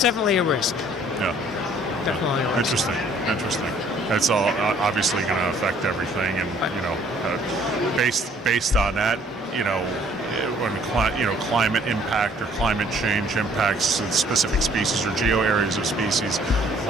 definitely a risk. Yeah. Definitely a risk. Interesting. It's all obviously going to affect everything, and based on that, when climate impact or climate change impacts specific species or geo areas of species,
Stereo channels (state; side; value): normal; both; correlation 0.59